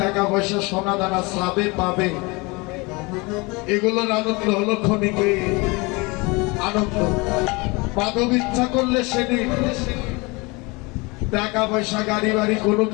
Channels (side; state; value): right; quieter; 26.3 dB